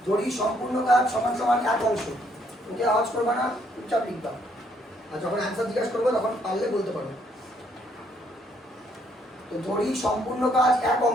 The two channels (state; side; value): normal; both; correlation 0.69